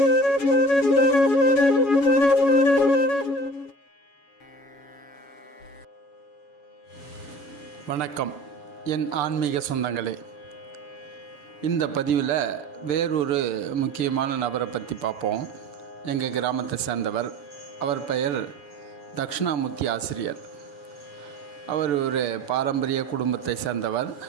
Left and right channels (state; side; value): late; right; 6.8 ms